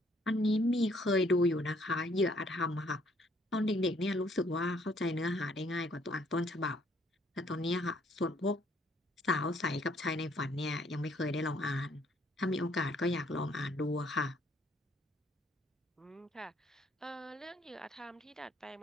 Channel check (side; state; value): both; normal; correlation 0.65